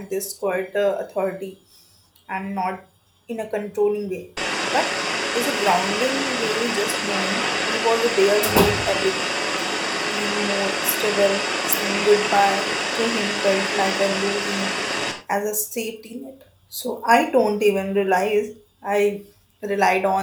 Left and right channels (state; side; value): identical; both; correlation 1.00